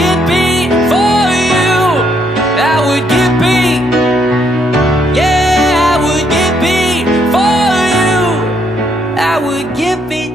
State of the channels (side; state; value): both; normal; correlation 0.72